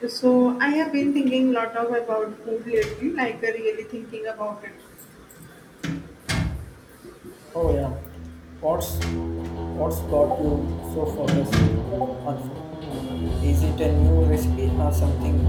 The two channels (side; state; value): both; identical; correlation 1.00